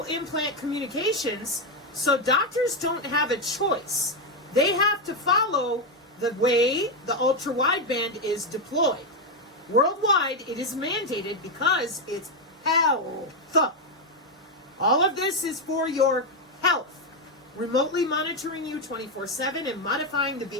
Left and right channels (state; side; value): normal; both; correlation 0.06